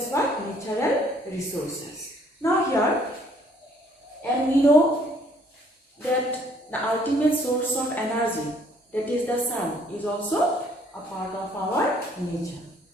what? Natural resources. Now here, and we know that the ultimate source of energy, that is the sun, is also a part of our nature.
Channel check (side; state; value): both; normal; correlation 0.62